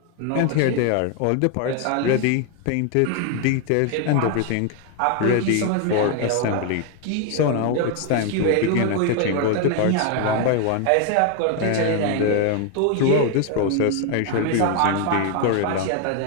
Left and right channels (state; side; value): different; both; correlation 0.01